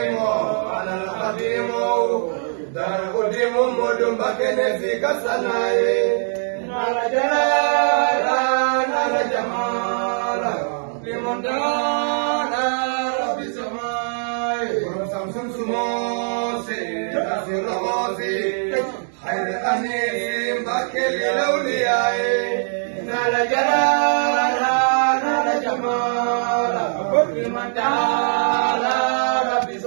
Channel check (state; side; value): silent; left; digital silence